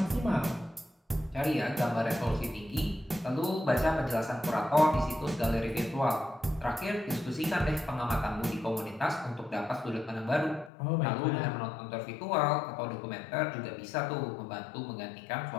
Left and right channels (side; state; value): right; drops out; at 10.7 s